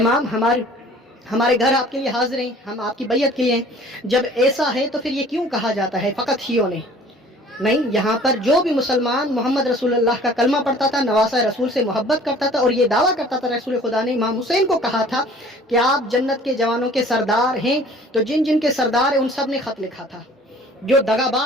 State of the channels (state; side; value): normal; both; correlation 0.50